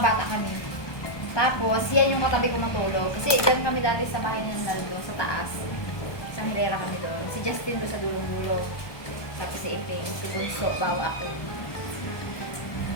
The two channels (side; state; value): right; late; 1.2 ms